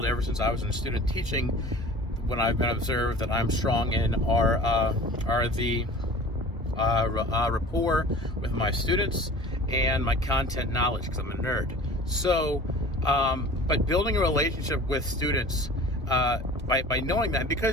ever since I was in student teaching, when I've been observed that I'm strong in, are the rapport with my students and my content knowledge, because I'm a nerd. So, but building a relationship with students by knowing that,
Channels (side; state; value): both; normal; correlation 0.42